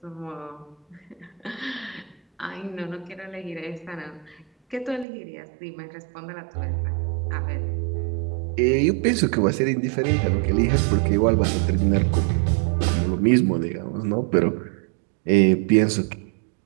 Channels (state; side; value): drops out; left; at 5.1 s